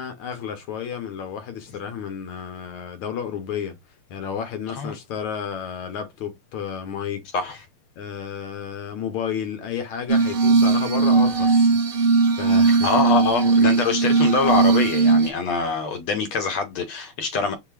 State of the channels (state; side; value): late; right; 6.5 ms